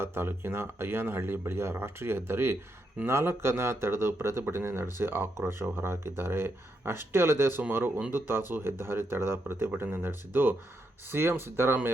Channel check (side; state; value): both; normal; correlation 0.81